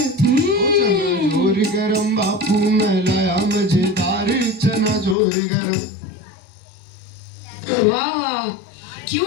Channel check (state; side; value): drops out; right; at 5.2 s